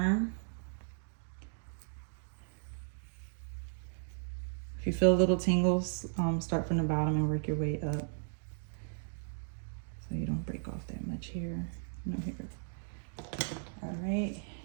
If you feel little tingles, start from the bottom and work your way up. So you don't break off that much hair. No hair. All right.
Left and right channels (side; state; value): left; silent; digital silence